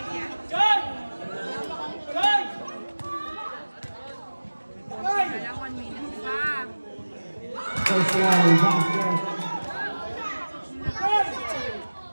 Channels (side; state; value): both; inverted; correlation -1.00